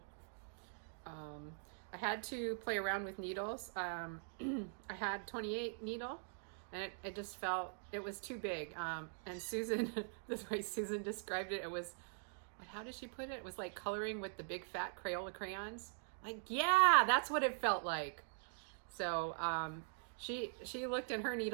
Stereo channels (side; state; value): left; silent; digital silence